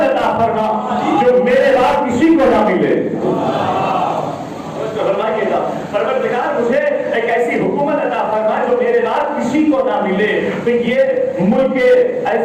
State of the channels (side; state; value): both; identical; correlation 1.00